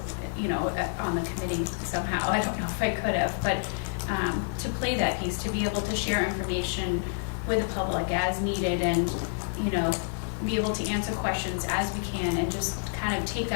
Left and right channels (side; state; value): right; silent; 59 dB below the other